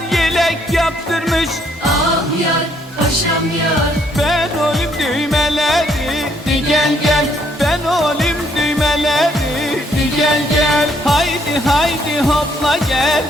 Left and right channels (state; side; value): normal; both; correlation 0.69